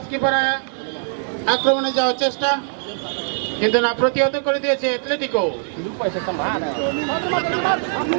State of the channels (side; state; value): left; silent; 63 dB below the other